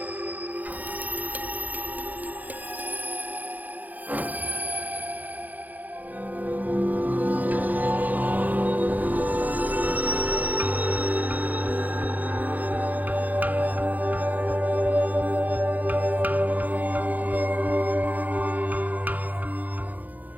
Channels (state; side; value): late; left; 0.081 ms